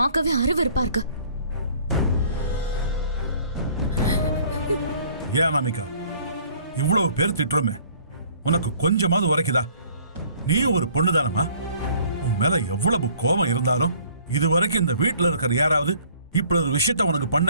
அருவருப்பா இருக்கு. ஏன் அனாமிகா, இவ்வளவு பேர் திட்டுறோமே, உனக்கு கொஞ்சமாவது உரைக்குதா? நீயும் ஒரு பொண்ணுதானமா? உன் மேல எவ்வளவு கோபம் இருந்தாலும் இதுவரைக்கும் இந்த வீட்டுல இருக்கிற யாராவது இப்படி ஒரு விஷயத்த உனக்கு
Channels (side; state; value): both; inverted; correlation -0.56